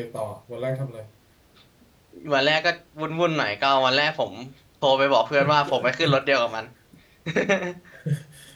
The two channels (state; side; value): identical; both; correlation 1.00